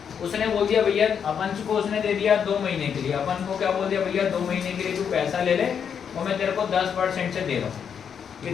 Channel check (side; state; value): right; quieter; 7.5 dB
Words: उसने बोल दिया भैया, अपन को उसने दे दिया 2 महीने के लिए, अपन को क्या बोल दिया भैया 2 महीने के लिए तू पैसा ले ले और मैं तेरे को 10% से दे रहा हूँ।